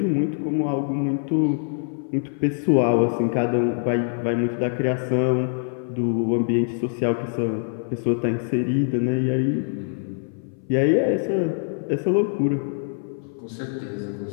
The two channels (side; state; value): right; silent; 59 dB below the other